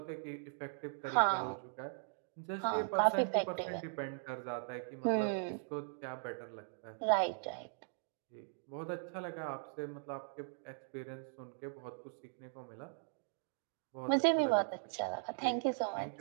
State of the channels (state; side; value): silent; left; digital silence